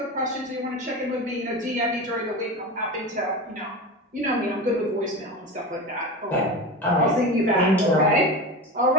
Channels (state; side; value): normal; both; correlation 0.27